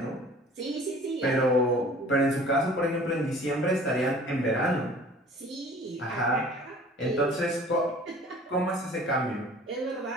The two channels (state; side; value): normal; both; correlation 0.48